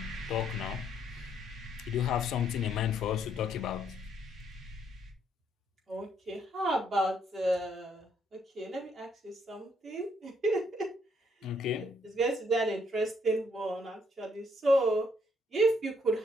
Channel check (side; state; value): both; normal; correlation 0.70